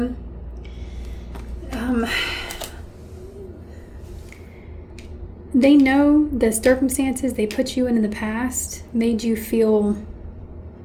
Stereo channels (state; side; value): identical; both; correlation 1.00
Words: They know the circumstances they put you in the past made you feel